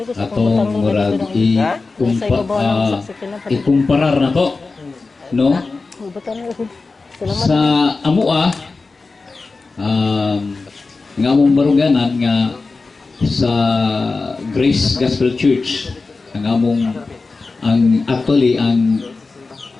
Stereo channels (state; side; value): quieter; right; 3.9 dB